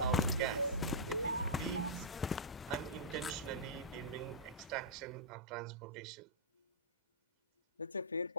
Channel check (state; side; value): normal; both; correlation -0.13